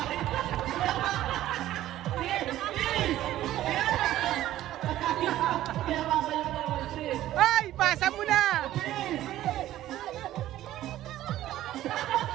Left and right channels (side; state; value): left; quieter; 13.8 dB